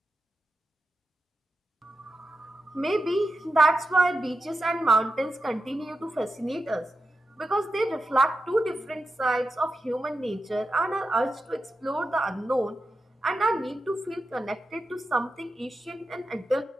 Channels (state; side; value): normal; both; correlation 0.90